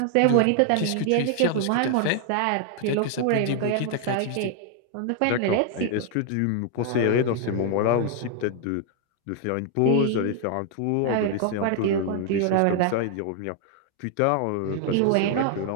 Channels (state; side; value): different; both; correlation 0.00